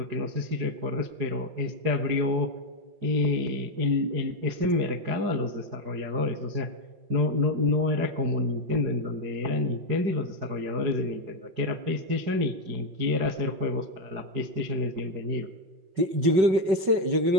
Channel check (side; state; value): left; late; 5.3 ms